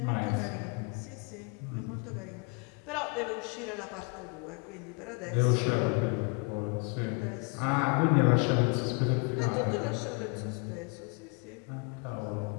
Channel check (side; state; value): right; quieter; 33.2 dB